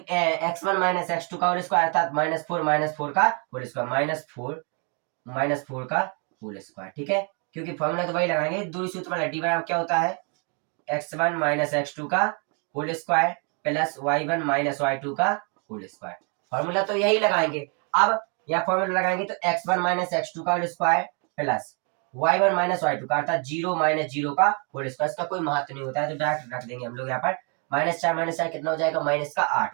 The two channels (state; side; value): quieter; left; 36.8 dB